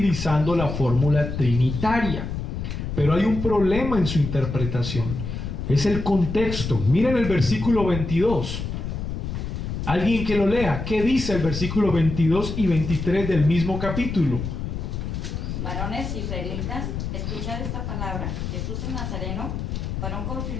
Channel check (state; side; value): noise; left; rumble, 5 dB below the sound